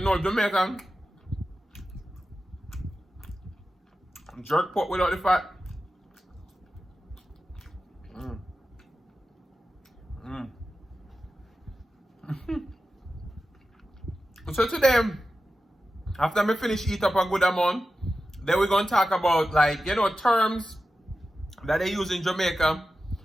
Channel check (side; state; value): both; normal; correlation 0.93